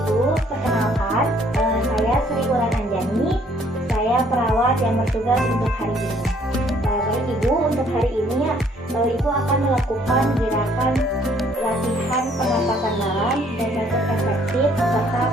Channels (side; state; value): both; normal; correlation 0.63